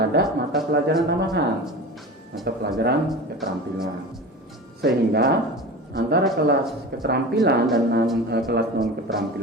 mata pelajaran tambahan, mata pelajaran keterampilan, sehingga antara kelas keterampilan dan kelas non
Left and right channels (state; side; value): normal; both; correlation 0.32